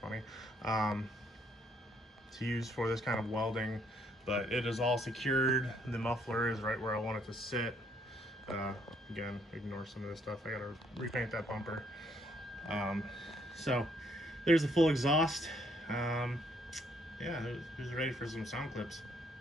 to use for this kind of welding, but it is all secured. The muffler is right where I want it to sit. Again, ignore some of this stuff. I gotta repaint that bumper. So there's the full exhaust. Yeah, who's ready for some sound clips?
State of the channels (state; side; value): normal; both; correlation 0.69